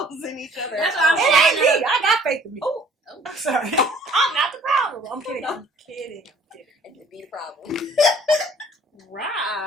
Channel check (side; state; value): both; normal; correlation 0.55